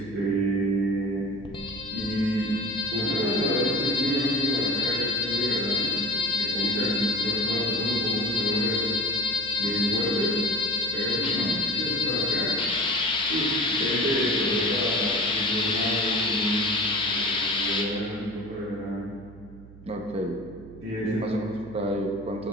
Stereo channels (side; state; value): right; noise; hum, 19 dB below the sound